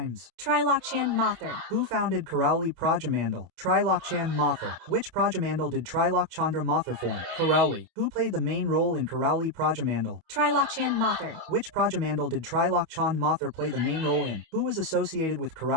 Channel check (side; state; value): left; late; 27 ms